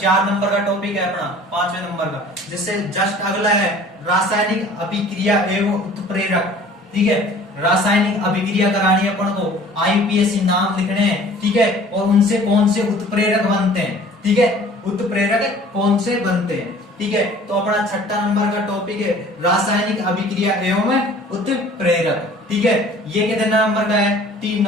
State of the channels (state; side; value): normal; both; correlation 0.49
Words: नंबर का टॉपिक है अपना 5वें नंबर का। जिससे जस्ट अगला है रासायनिक अभिक्रिया एवं उत्प्रेरक, ठीक है, रासायनिक अभिक्रिया करानी है अपन को, आईपीएससी नाम लिखने हैं, ठीक है, और उनसे कौन से उत्प्रेरक बनते हैं, ठीक है, उत्प्रेरक कौन से बनते हैं, ठीक है। तो अपना 6 नंबर का टॉपिक है रासायनिक अभिक्रिया एवं उत्प्रेरक, ठीक है। ये कितने नंबर का है, 3